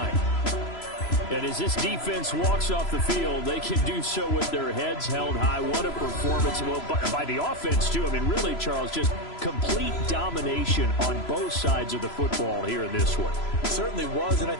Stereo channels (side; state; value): right; late; 3.0 ms